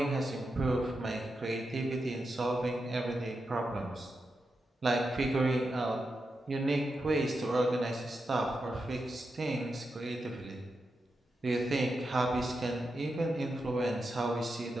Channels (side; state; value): both; normal; correlation 0.88